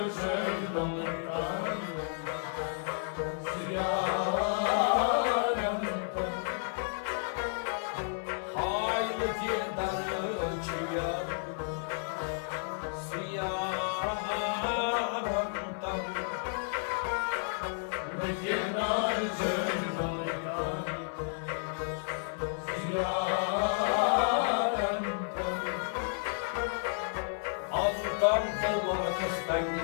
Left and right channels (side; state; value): right; silent; 56 dB below the other